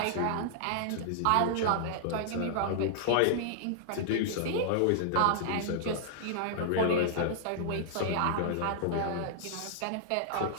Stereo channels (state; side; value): different; both; correlation -0.01